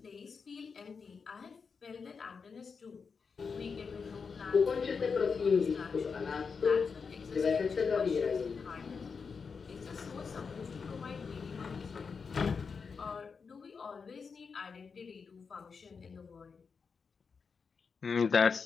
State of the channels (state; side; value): quieter; right; 5.5 dB